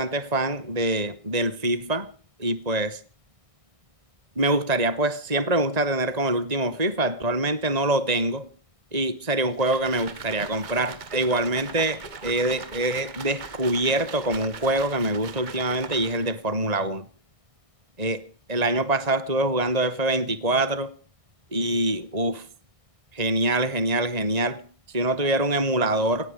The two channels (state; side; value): late; left; 1.9 ms